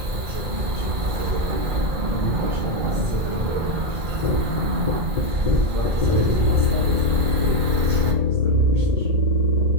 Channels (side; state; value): left; late; 2.4 ms